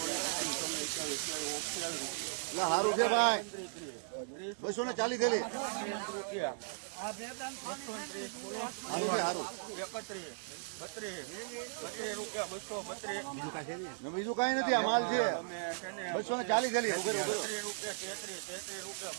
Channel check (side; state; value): left; silent; digital silence